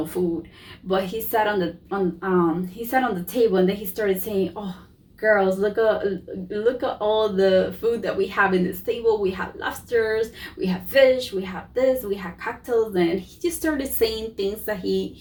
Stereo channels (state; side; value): identical; both; correlation 1.00